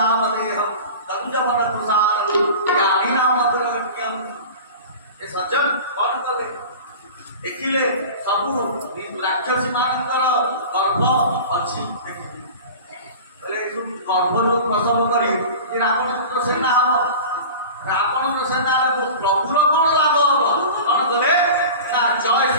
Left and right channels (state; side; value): inverted; both; correlation -0.35